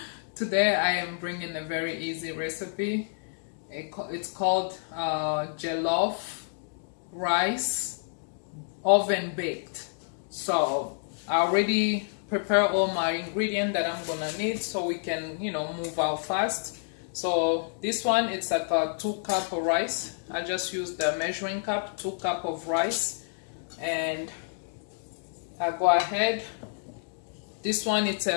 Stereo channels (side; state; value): right; silent; digital silence